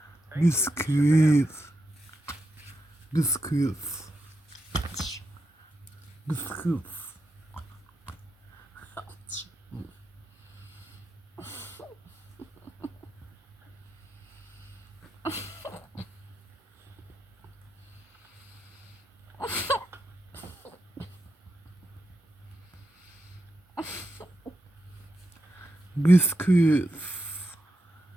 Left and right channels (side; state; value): both; normal; correlation 0.86